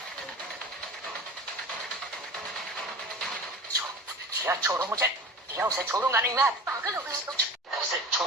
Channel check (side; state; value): both; normal; correlation 0.36